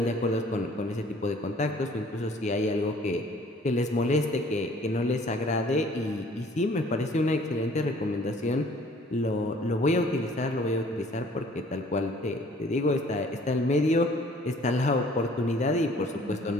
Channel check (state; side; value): normal; both; correlation 0.55